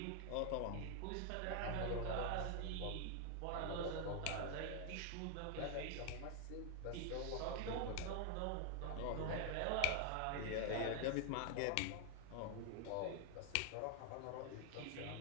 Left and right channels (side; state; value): both; different; correlation 0.00